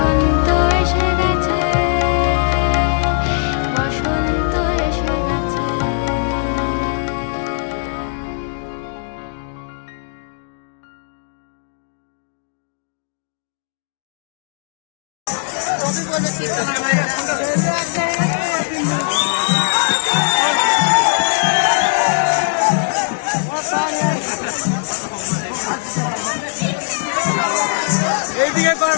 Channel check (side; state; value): right; silent; digital silence